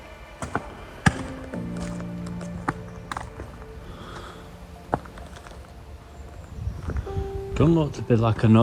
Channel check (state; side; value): identical; both; correlation 1.00